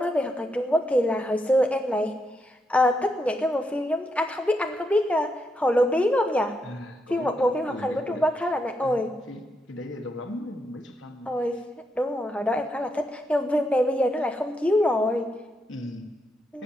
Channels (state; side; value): normal; both; correlation 0.81